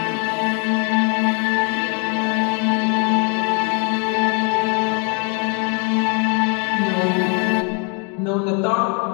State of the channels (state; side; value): quieter; right; 37.6 dB